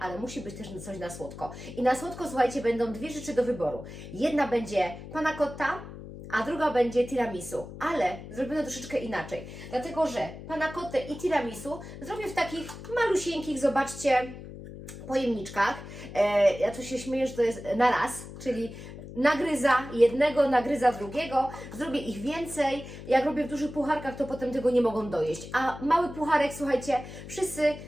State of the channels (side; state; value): left; noise; hum, 13 dB below the sound